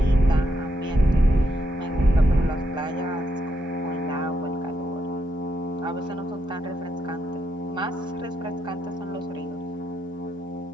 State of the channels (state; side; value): normal; both; correlation 0.79